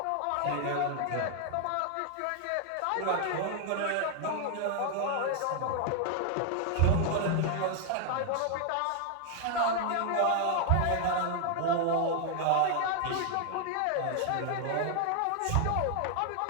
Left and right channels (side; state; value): both; different; correlation 0.00